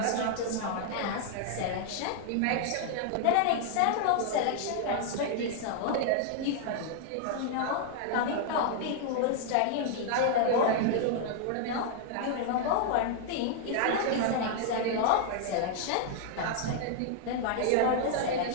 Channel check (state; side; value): different; both; correlation 0.00